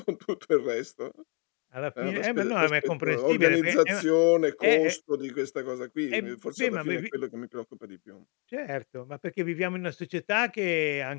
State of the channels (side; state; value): right; quieter; 36.1 dB